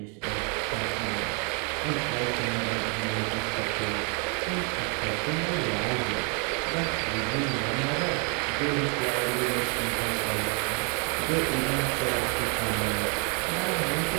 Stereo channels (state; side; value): quieter; left; 35.9 dB